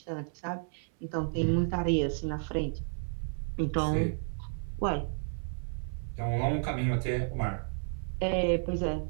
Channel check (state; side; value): silent; left; 56 dB below the other